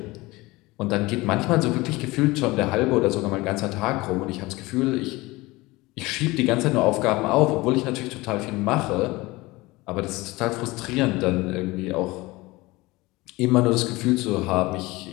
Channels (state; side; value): quieter; right; 21.3 dB